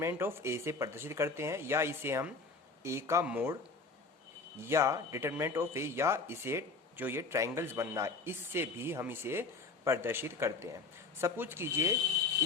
of A से प्रदर्शित करते हैं, या इसे हम ए का मोड या डिटर्मिनेंट ऑफ ए, या इसे जो ये ट्रायंगल्स बनना है इससे भी हम इसे प्रदर्शित करते हैं। सपोज कीजिए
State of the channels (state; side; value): quieter; right; 4.1 dB